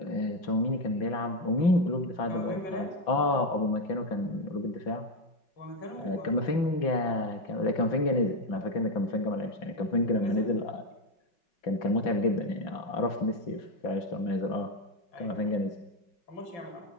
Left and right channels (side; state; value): right; late; 5.4 ms